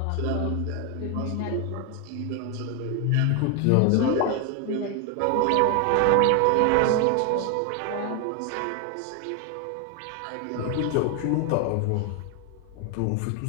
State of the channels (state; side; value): different; both; correlation 0.01